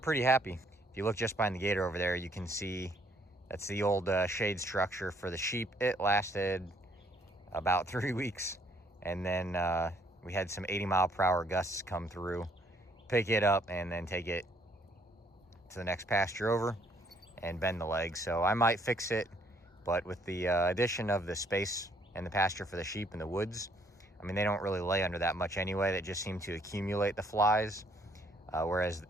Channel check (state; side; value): normal; both; correlation 0.66